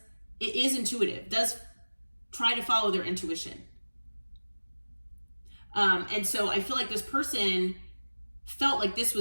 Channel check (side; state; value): both; inverted; correlation -1.00